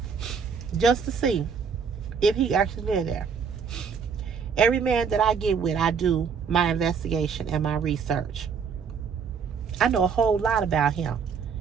just to see if he actually lived there. Every man that I get with, I do my investigation and my research. I know a whole lot about him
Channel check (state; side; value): quieter; left; 6.3 dB